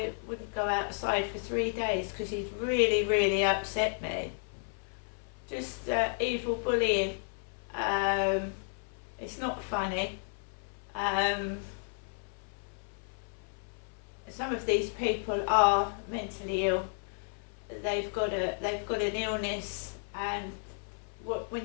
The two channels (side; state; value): right; silent; 56 dB below the other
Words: wouldn't go outside for 3 days because he'd really, really upset me. Just evil bullying. It's not funny. Some of these people are mentally ill. They've got an illness, and when